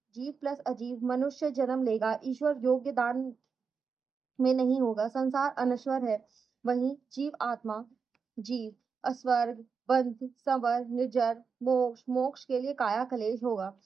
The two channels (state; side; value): quieter; left; 5.6 dB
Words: जीव प्लस अजीव मनुष्य जन्म लेगा ईश्वर योग्य दान में नहीं होगा। संसार अनश्वर है। वहीं जीव आत्मा जीव अस्वर्ग बंध संवर निर्जर मोक्ष के लिए काया कलेश होगा।